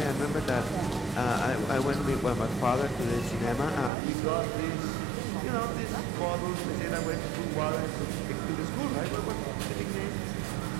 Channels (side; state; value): left; drops out; at 3.9 s